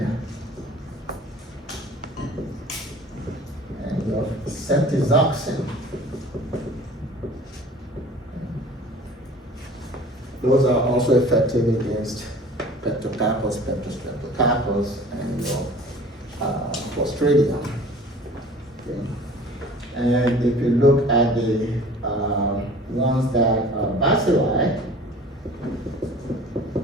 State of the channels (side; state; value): both; normal; correlation 0.46